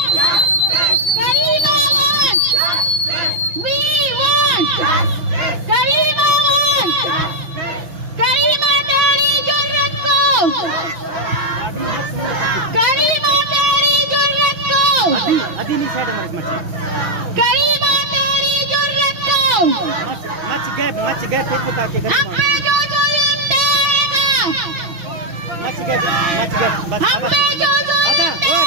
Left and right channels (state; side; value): late; left; 6.0 ms